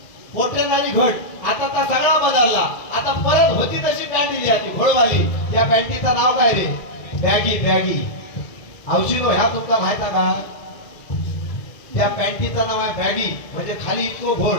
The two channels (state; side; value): late; right; 1.9 ms